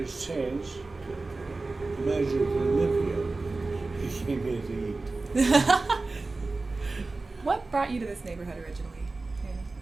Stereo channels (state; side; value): quieter; left; 3.5 dB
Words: has changed. The manager didn't live here. He came here to eat. What brought you to this neighborhood originally? Manny?